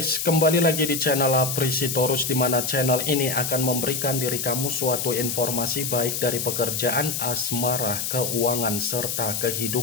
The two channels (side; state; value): left; noise; hiss, 2 dB below the sound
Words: kembali lagi di channel Aprisitorus, di mana channel ini akan memberikan diri kamu suatu informasi baik dari pekerjaan, asmara, keuangan, serta